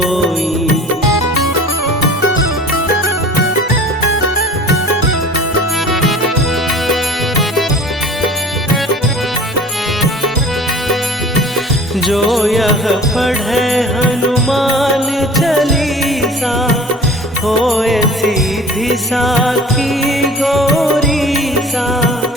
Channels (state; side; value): normal; both; correlation 0.44